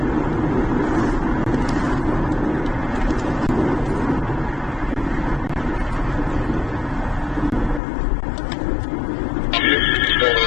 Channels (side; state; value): right; drops out; at 7.8 s